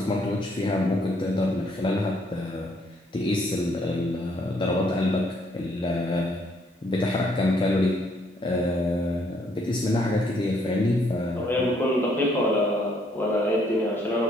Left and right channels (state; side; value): normal; both; correlation 0.68